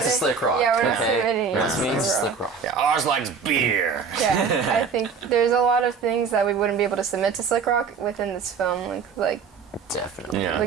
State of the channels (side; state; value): left; quieter; 5.8 dB